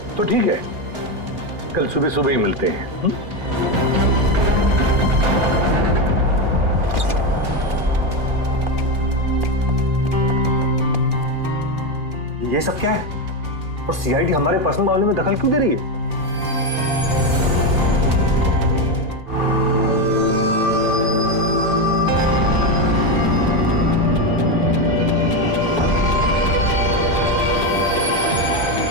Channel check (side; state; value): left; late; 2.5 ms